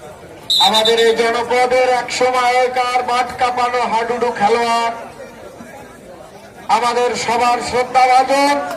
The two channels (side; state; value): both; identical; correlation 1.00